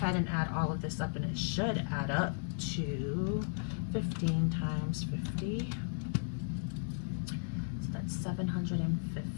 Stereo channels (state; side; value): silent; right; digital silence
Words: and add all of this up, and it should add up to 15 times 50. So that's